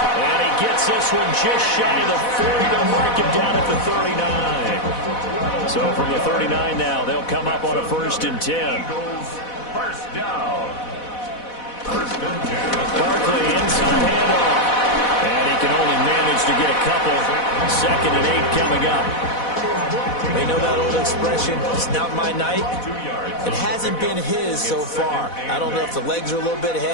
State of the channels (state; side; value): late; right; 4.1 ms